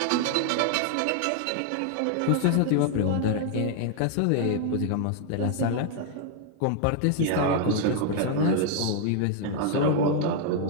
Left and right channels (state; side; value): different; both; correlation 0.00